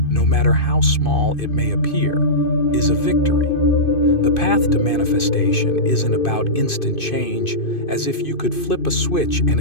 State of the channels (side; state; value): right; late; 2.5 ms